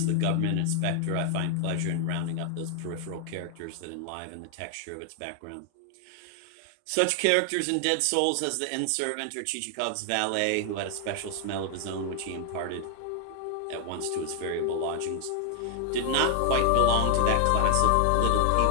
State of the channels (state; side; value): different; both; correlation 0.00